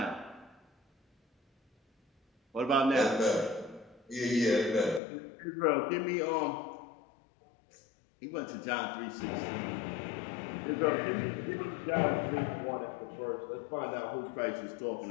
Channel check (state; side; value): drops out; right; at 5.0 s